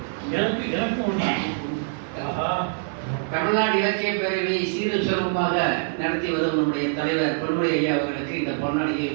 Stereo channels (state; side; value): silent; left; 62 dB below the other